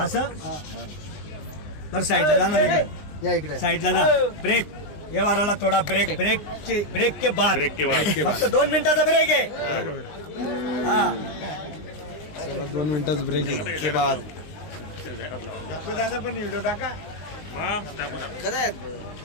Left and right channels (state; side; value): late; right; 20 ms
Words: हा. तर साईडला जाणार आहे या इकडे साईडला जा ब्रेक व्यवहाराला थोडा ब्रेक के बाद फक्त 2 मिनिटाचा ब्रेक आहे. हा 2 मिनिटाचा ब्रेक के बाद दादा पण व्हिडिओ टाका.